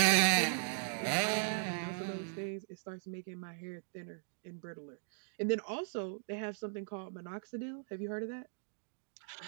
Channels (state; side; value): silent; left; digital silence